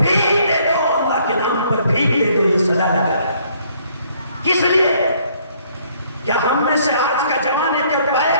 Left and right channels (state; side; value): inverted; both; correlation -0.64